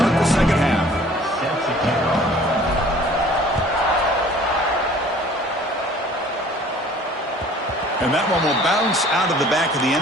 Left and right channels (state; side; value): normal; both; correlation 0.51